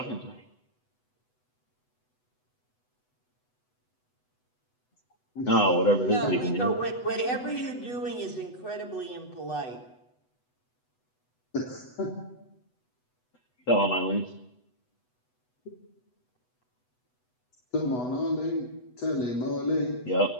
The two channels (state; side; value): late; right; 8.0 ms